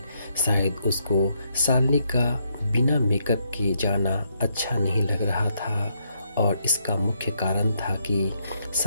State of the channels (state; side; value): inverted; both; correlation -0.76